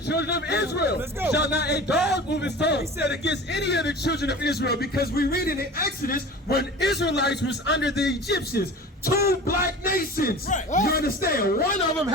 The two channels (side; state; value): both; normal; correlation 0.37